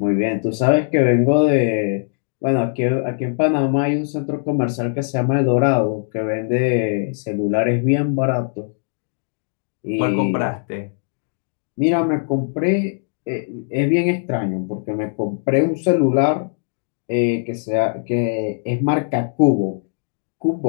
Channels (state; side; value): silent; right; digital silence